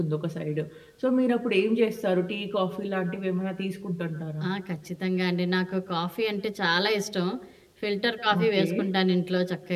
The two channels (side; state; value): both; identical; correlation 1.00